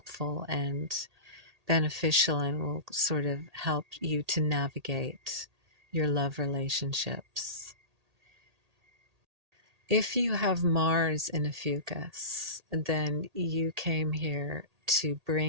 and beneficial, and will sort of help you to navigate your love relationships. If you have Mars in Ophiuchus, then you came here to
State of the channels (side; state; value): left; late; 1.8 ms